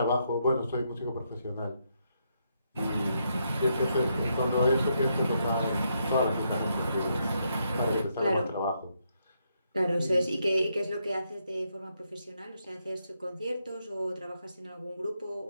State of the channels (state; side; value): inverted; both; correlation -0.78